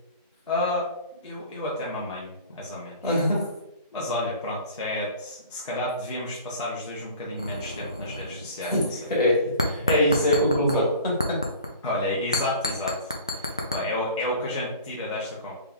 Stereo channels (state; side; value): inverted; both; correlation -0.42